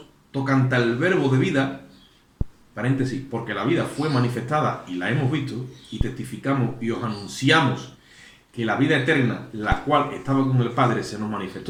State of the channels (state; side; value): identical; both; correlation 1.00